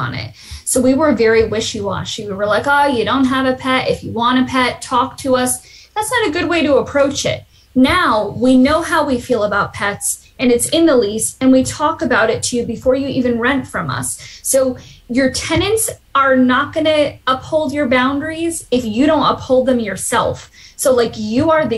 it. So we were very wishy-washy. We were like, oh, you don't have a pet. If you want a pet, talk to us. That's not a good way to approach it. Now we know how we feel about pets and it's in the lease and we talk about it to you before you even rent from us. So your tenants are not going to uphold your boundaries if you don't uphold them yourself. So like you are the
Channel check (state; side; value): identical; both; correlation 1.00